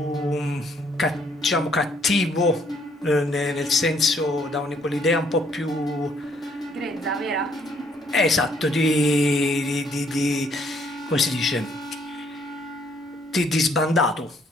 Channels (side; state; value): both; normal; correlation 0.66